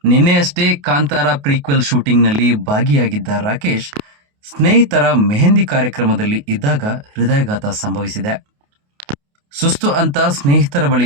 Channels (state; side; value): late; left; 28 ms